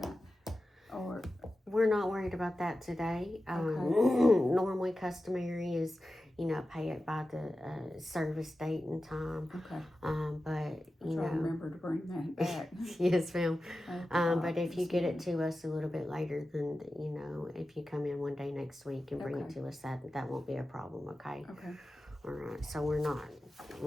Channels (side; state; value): both; normal; correlation 0.93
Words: I? Or, We're not worried about that today. Okay. Normally customary is, pay it by the service date and time. okay, But, I'll try to remember to bring that back. yes, ma'am. I forgot But if you this get it morning. to us a little bit later, then, if you come in one day next week and bring it Okay. to us, that won't be a problem, okay? Okay, All right, so we're